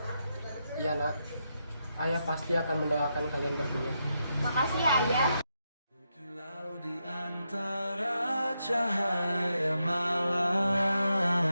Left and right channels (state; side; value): inverted; both; correlation -0.83